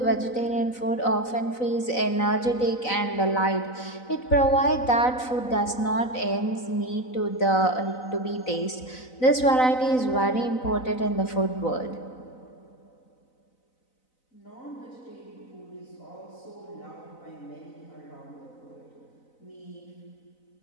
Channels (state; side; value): late; right; 4.0 ms